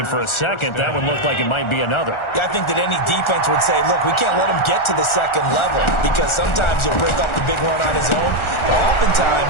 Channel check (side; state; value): right; late; 1.4 ms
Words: for a second, that one looked like it might be another. Yeah, I think that any defense would say, look, we can't let him get to the 2nd level, because sometimes he'll break off the big run on his own, but